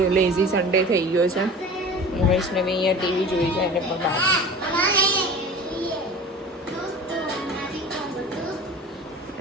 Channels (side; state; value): both; normal; correlation 0.38